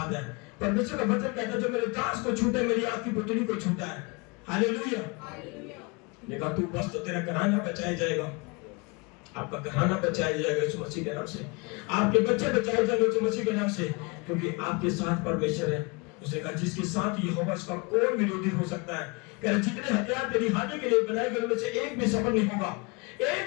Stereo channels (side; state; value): right; quieter; 28.9 dB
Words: है, परमेश्वर का वचन कहता है जो मेरे दास को छूटे मेरी आपकी पुतली को छूटा है। हालेलुया। देखा तू बस तो तेरा घराना बचाया जाएगा, आपका घराना बचाया जाएगा यीशु मसीह के नाम से, आपके बच्चे बचाए जाएंगे यीशु मसीह के नाम से, क्योंकि आपके साथ परमेश्वर है। उसने कहा जिसके साथ यहोवा उसका कौन विरोधी हो सकता है? कह रहे जितने हथियार तेरी हानि के लिए बनाए गए उनमें से एक भी सफल नहीं होगा,